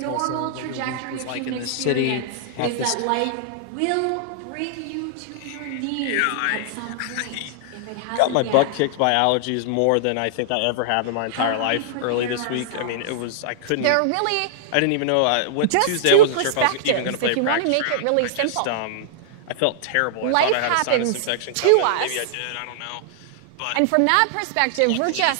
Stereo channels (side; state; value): both; different; correlation -0.01